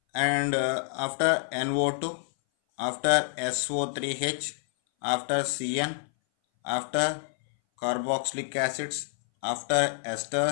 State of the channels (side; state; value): right; silent; 58 dB below the other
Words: and after NO2, after SO3H, after CN, after carboxylic acids, after